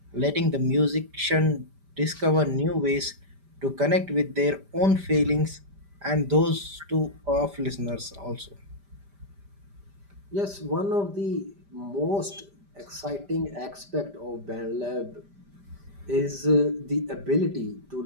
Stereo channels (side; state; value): left; late; 5.0 ms